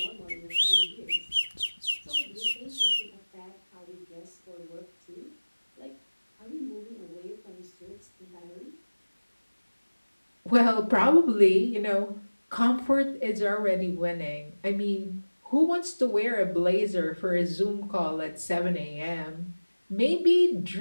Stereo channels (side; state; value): both; inverted; correlation -1.00